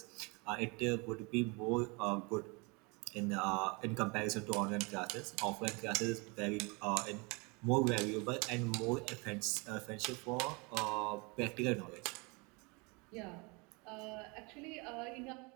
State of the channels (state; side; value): quieter; left; 29.3 dB